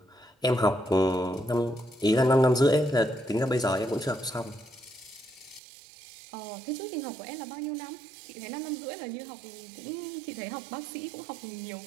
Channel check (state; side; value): drops out; left; at 5.6 s